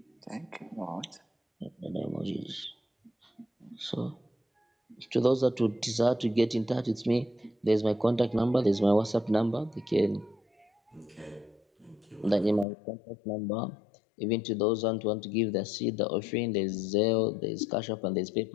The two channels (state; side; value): drops out; right; at 12.7 s